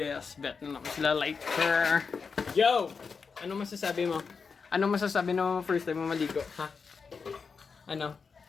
bet na naman sila. Like her. Yo! Ano masasabi mo? Ano masasabi mo first time mo maligo? Ha? Ano?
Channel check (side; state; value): right; quieter; 5.4 dB